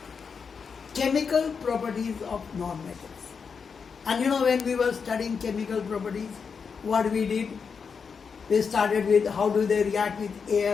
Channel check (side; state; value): right; quieter; 5.8 dB